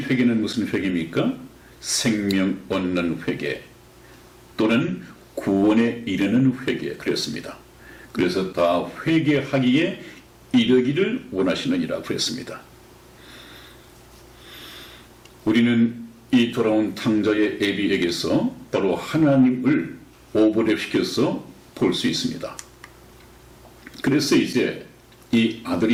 무슨 회개입니까? 생명 얻는 회개 또는 구원에 이르는 회개, 그랬습니다. 그래서 다 회개하기에 이르기를 원하시느니라 그랬습니다. 우리는 이 돌아온 탕자의 애비에게서 바로 하나님을 오버랩시켜서 볼 수 있습니다. 그래서 이제 이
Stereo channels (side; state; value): both; identical; correlation 1.00